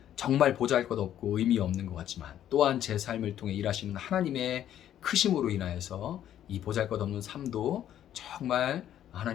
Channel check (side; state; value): right; quieter; 11.1 dB